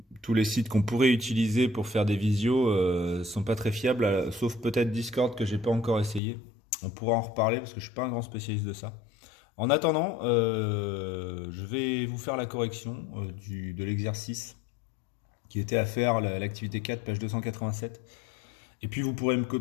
Tous les sites qu'on pourrait utiliser pour faire des visios sont pas très fiables, sauf peut-être Discord que j'ai pas encore essayé. On pourra en reparler parce que je suis pas un grand spécialiste de ça. En attendant, je vais vous faire la correction de l'exercice qui était à faire, l'activité 4, page 287. Et puis vous pourrez me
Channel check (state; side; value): drops out; right; at 6.2 s